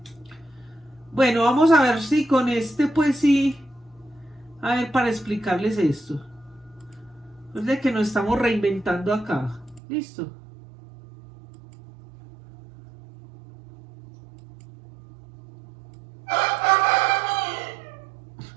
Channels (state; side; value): drops out; left; at 9.8 s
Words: Bueno, vamos a ver si con este, pues sí. A ver, para explicarles esto. Es de que nos estamos reinventando acá. ¿Listo?